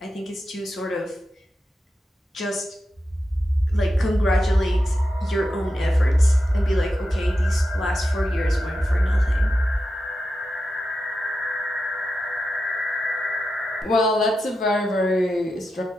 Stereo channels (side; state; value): both; normal; correlation 0.90